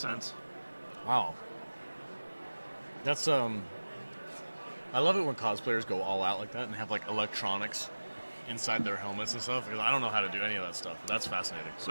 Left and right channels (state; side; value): inverted; both; correlation -1.00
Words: Wow. That's I love it when cosplayers go all out like that and have like electronics inside their helmets and stuff, because I don't know how to do any of that stuff. But that's fascinating.